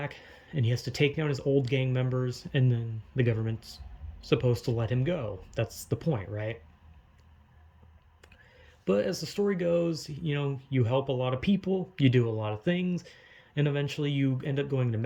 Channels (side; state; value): both; identical; correlation 1.00